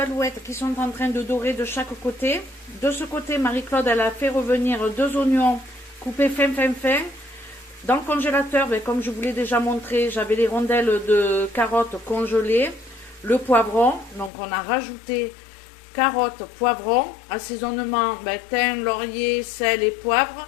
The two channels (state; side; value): drops out; right; at 14.3 s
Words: qui sont en train de dorer de chaque côté. De ce côté, Marie-Claude, elle a fait revenir 2 oignons coupés fin. Dans le congélateur, comme je vous l'ai déjà montré, j'avais les rondelles de carottes congelées, le poivron. Donc on a rajouté carottes, poivron, assaisonnement, thym, laurier, sel et poivre.